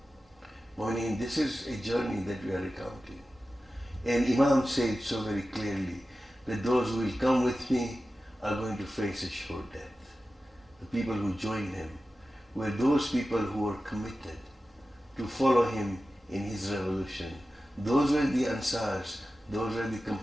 to. I mean, this is a journey that we are recounting. And Imam said so very clearly that those who will come with me are going to face a sure death. The people who joined him were those people who were committed to follow him in his revolution. Those were the Ansars, those were the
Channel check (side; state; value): both; normal; correlation 0.94